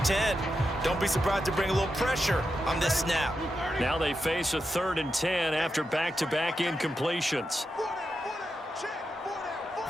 10. Don't be surprised to bring a little pressure on this snap. Now they face a 3rd and 10 after back-to-back incompletions.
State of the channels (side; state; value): both; normal; correlation 0.87